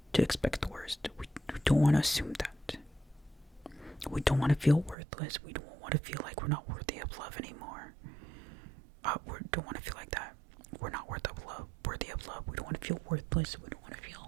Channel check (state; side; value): drops out; left; at 5.0 s